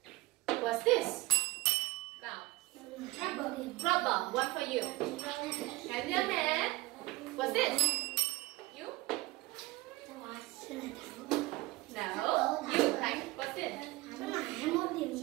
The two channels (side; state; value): left; quieter; 20.0 dB